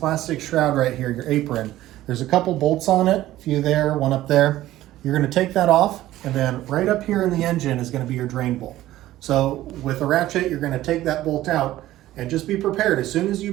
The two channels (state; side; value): quieter; left; 14.9 dB